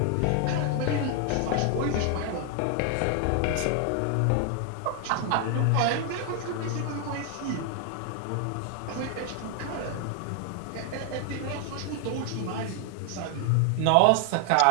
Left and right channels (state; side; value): different; both; correlation 0.00